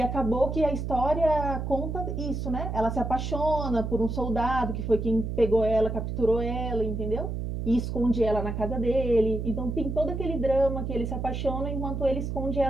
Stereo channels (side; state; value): right; noise; hum, 4 dB below the sound